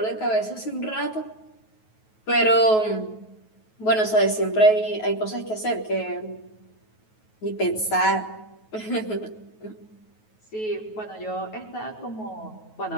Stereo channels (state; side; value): late; right; 9.3 ms